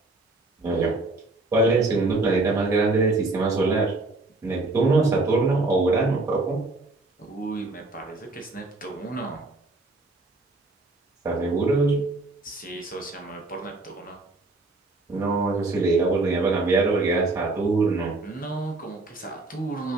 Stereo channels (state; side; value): quieter; left; 3.1 dB